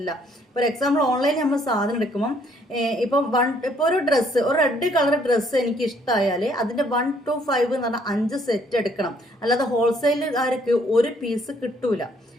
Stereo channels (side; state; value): both; normal; correlation 0.65